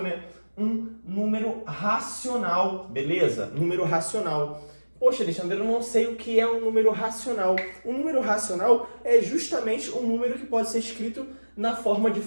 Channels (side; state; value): both; inverted; correlation -1.00